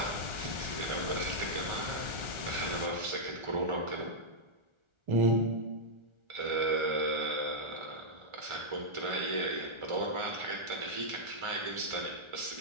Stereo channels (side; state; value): left; late; 1.4 ms